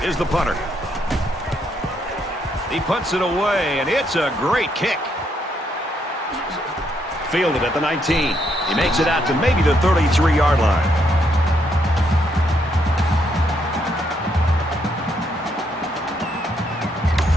is the punter. He punts it away, and it's a great kick. Fielded at the 19. He makes it out to maybe the 33-yard line.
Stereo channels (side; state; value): both; normal; correlation 0.75